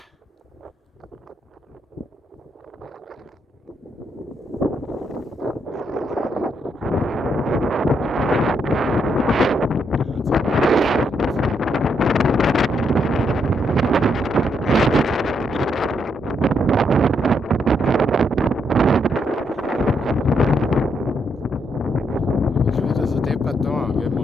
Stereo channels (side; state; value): both; normal; correlation 0.77